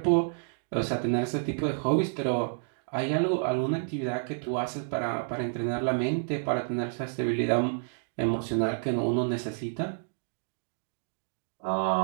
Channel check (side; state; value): left; silent; digital silence